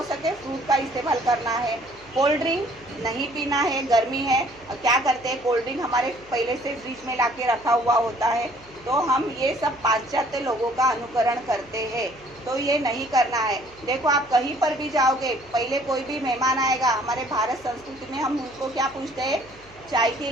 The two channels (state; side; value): noise; right; hum, 26 dB below the sound